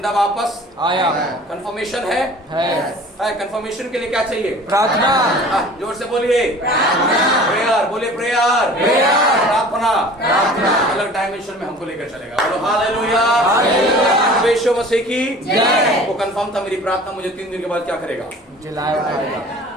वापस आया कंफर्मेशन है। कंफर्मेशन के लिए क्या चाहिए? प्रार्थना। जोर से बोलिए प्रेयर। बोलिए प्रेयर। प्रार्थना अलग डायमेंशन में हमको लेकर चलेगा। बोलो हालेलुया। यीशु मसीह की जय। वो कंफर्म था मेरी प्रार्थना मुझे 3 दिन के बाद क्या करेगा? जिलाया उठाएगा।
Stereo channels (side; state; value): both; normal; correlation 0.44